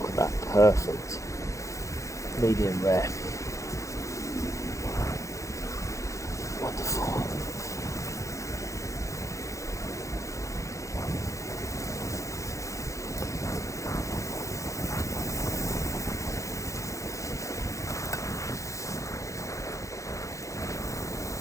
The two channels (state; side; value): late; right; 0.15 ms